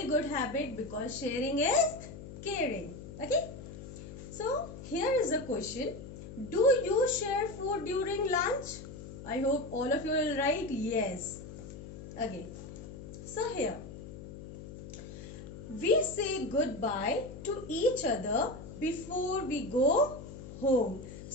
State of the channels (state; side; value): noise; left; hum, 12 dB below the sound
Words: good habit, because sharing is caring. Okay, so here is a question: do you share food during lunch? I hope all of you will write yes. Okay, so here we say goodbye to each other before we go home.